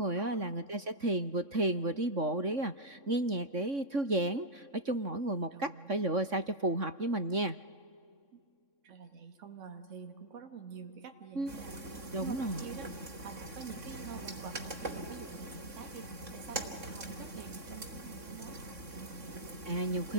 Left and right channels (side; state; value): left; late; 3.6 ms